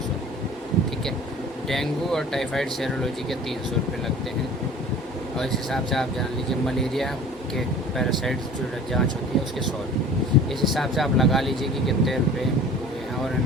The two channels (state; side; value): normal; both; correlation 0.44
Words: ठीक है। डेंगू और टाइफाइड सेरोलॉजी के 300 रुपये लगते हैं। और इस हिसाब से आप जान लीजिए मलेरिया के पैरासाइट्स जो जांच होती है उसके 100 रुपये। इस हिसाब से आप लगा लीजिए कि कितने रुपए हुए हैं और